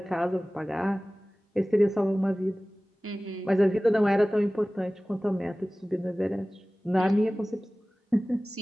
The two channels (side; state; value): both; normal; correlation 0.98